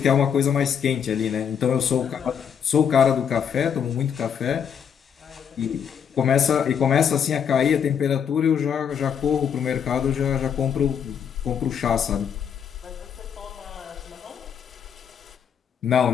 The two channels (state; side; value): quieter; right; 7.8 dB